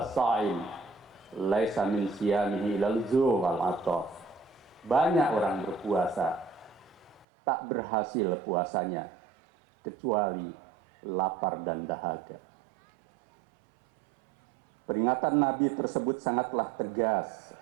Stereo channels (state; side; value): drops out; left; at 7.2 s